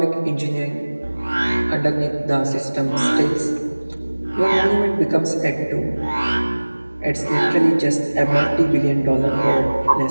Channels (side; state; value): both; inverted; correlation -1.00